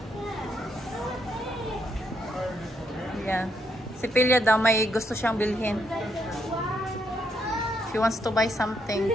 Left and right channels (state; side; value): normal; both; correlation 0.76